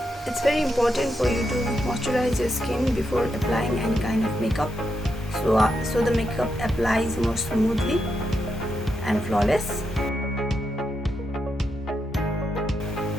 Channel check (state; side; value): normal; both; correlation 0.83